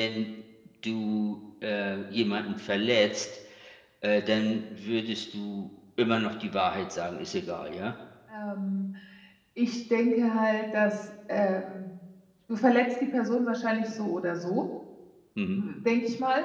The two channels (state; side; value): identical; both; correlation 1.00